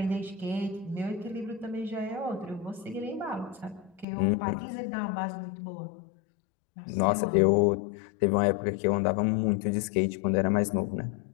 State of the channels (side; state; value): right; drops out; at 4.0 s